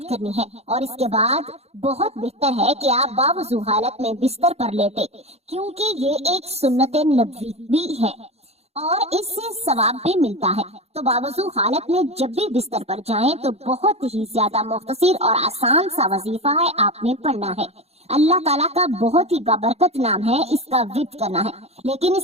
करनी है। और इसके बाद बहुत बेहतर है कि आप बावजू हालत में बिस्तर पर लेटे, क्योंकि ये एक सुन्नत नबवी भी है और इससे सवाब भी मिलता है। तो बावजू हालत में जब भी बिस्तर पर जाएं तो बहुत ही ज्यादा मुख्तसर और आसान सा वजीफा है, आपने पढ़ना है। अल्लाह ताला का बहुत ही बाबरकत नाम है, इसका विर्द करना है। लेकिन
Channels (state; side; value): late; left; 0.30 ms